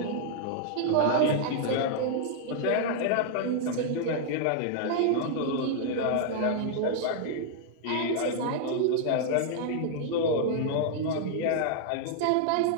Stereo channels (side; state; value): both; different; correlation -0.01